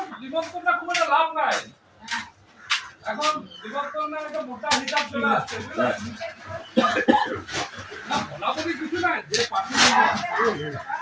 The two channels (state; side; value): identical; both; correlation 1.00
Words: বিবর্তনটা খুব একটা লাভ নাই। এখন বিবর্তন একটা মোটা হিসাব চলে আসছে, বুঝলেন? না বলাবলি কিছু নাই, যে পার্টি